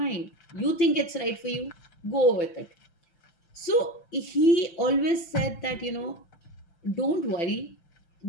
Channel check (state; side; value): late; right; 5.9 ms